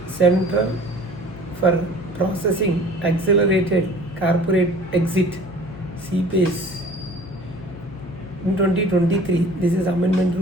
Central for Processing Accelerated Corporate Exit, CPAs, in 2023. This is Amendment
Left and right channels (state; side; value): noise; left; hum, 17 dB below the sound